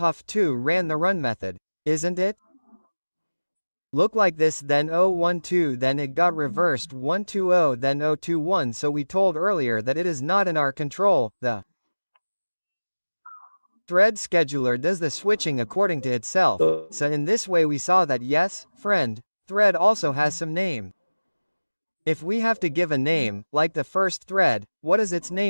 2 ran the run method. Isn't it? Look like this, then 012, then it got reversed 120, then 021. So we told earlier that it is not in our control. The thread scheduler does the switching according to itself. So in this way we saw that yes, friend, thread also has some name. If we have to give a name, like the first thread, what is its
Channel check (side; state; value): both; inverted; correlation -1.00